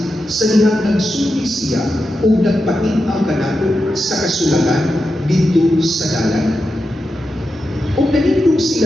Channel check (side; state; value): both; normal; correlation 0.89